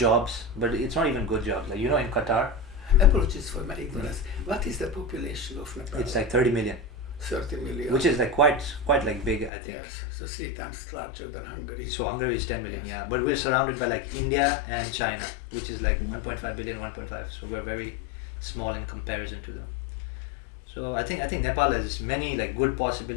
but it's not even good jobs. Like in Qatar, Apologies for my ignorance. What is the population of Nepal? it's like 30 million, 30 million. which is like quite like big. I think. Yes, so 3 times larger than Hungary. So Hungary is 10 million, Yes. yeah. But we're surrounded by like India and China, which is like 1.5 billion, 1.5. So we're very small in comparison to them. So I think Nepal has many like good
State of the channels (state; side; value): drops out; right; at 9.5 s